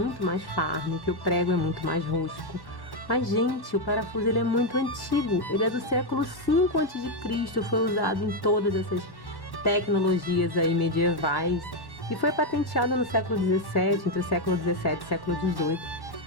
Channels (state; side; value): late; right; 1.1 ms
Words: mais farm, que o prego é muito mais rústico. Mas gente, o parafuso ele é muito antigo, ele é do século V a.C., foi usado em todas essas tecnologias aí medievais e foi patenteado no século XVII, entre o século XVII e o século XVIII.